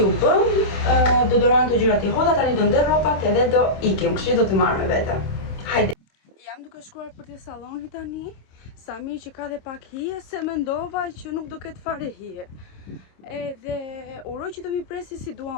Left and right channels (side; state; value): right; late; 26 ms